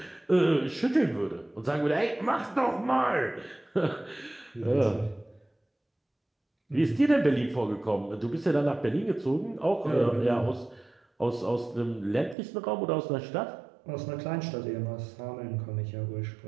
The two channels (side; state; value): left; drops out; at 12.4 s